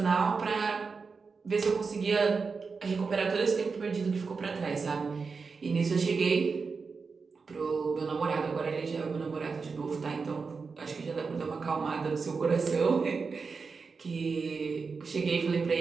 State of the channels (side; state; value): left; quieter; 4.9 dB